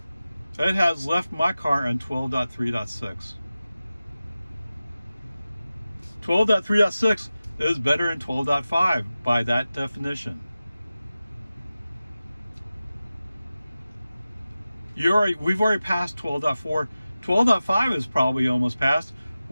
it has left my car in 12.3.6. 12.3.6 is better than 12.5 by that definition. We've already passed 12.4. 12.5 is probably almost passed.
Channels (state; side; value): inverted; both; correlation -0.95